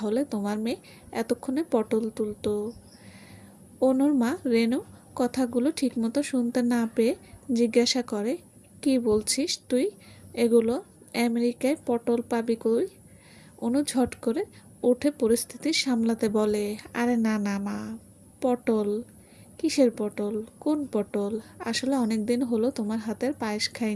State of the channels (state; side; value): identical; both; correlation 1.00